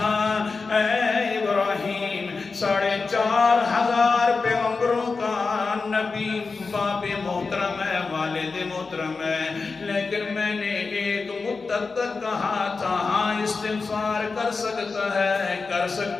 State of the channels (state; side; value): quieter; right; 4.4 dB